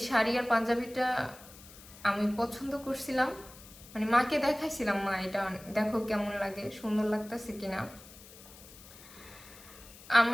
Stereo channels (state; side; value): noise; left; hiss, 19 dB below the sound